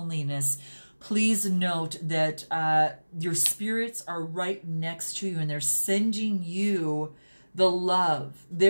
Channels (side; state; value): both; inverted; correlation -1.00